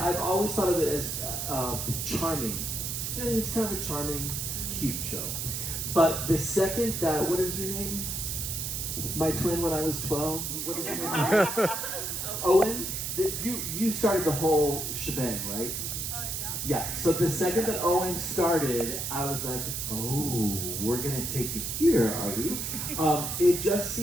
always thought of it as charming. I think it's kind of a charming, cute show. But the second that, what is your name? My twin when I was 12. What is your name? Owen. You started the whole shebang, right? Yeah, so the second that Owen started, I was like, oh, we're gonna take it here, are we? It just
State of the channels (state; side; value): noise; right; hiss, 3 dB below the sound